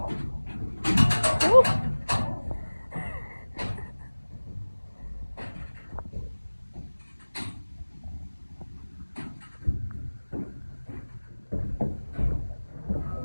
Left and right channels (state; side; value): inverted; both; correlation -1.00